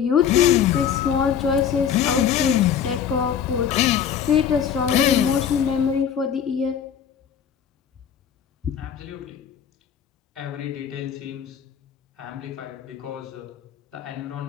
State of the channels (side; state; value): right; quieter; 8.2 dB